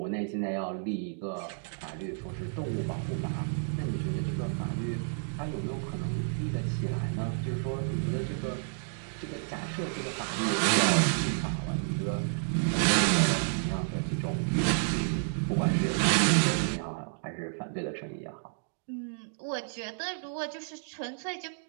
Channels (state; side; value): silent; left; digital silence